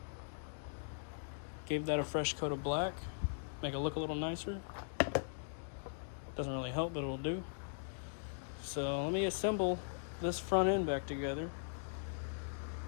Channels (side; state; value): right; silent; digital silence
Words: Gave that a fresh coat of black. Make it look a little nicer. Doesn't really help, but it'll do. So let me assemble this front end back together.